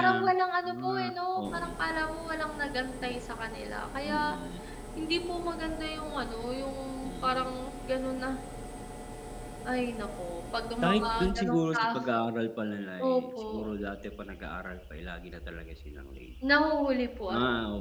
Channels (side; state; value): both; identical; correlation 1.00